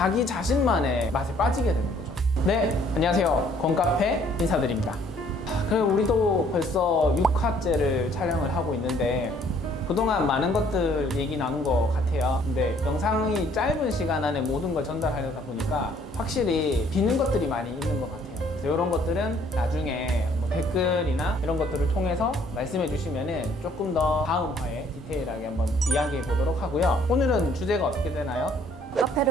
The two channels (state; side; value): normal; both; correlation 0.61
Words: 자신만의 맛에 빠지게 되는 거죠. 네, 안녕하세요. 권카페 인사드립니다. 그리고 우리도 벌써 6화째를 촬영을 하고 있는데 그동안 많은 것들 얘기 나눈 것 같아요. 근데 영상이 짧은 시간 안에 모든 걸 전달하려다 보니까 확실히 비는 것들이 많이 있는 것 같아요. 그래서 이런 것들은 나중에 뭐 댓글이나 이런 것들을 통해서 말씀해 주시면은 조금 더 다음 화에 디테일하게 한번 이야기해 보도록 하고요. 오늘은 주제가 어떻게 되나요?